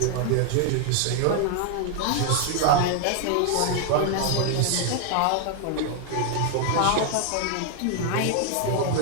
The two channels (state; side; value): different; both; correlation 0.00